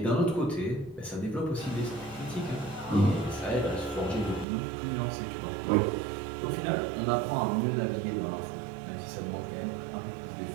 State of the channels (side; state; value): left; drops out; at 4.5 s